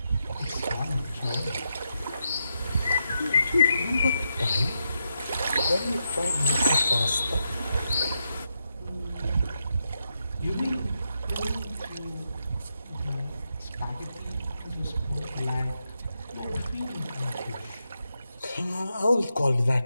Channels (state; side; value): inverted; both; correlation -0.84